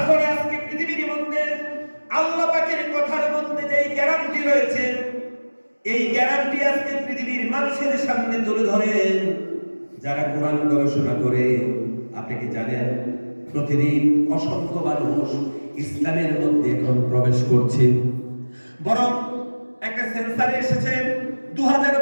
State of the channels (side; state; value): both; inverted; correlation -1.00